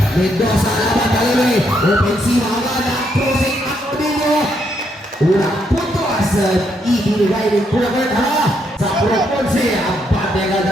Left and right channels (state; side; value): normal; both; correlation 0.76